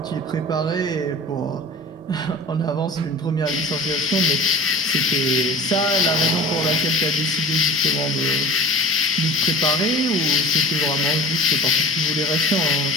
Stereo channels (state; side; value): normal; both; correlation 0.39